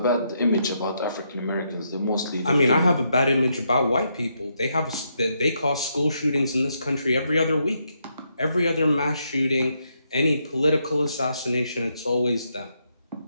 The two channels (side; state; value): both; inverted; correlation -0.78